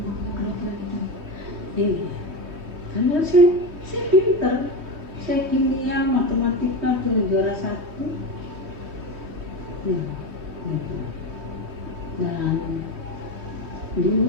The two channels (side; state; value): left; late; 3.2 ms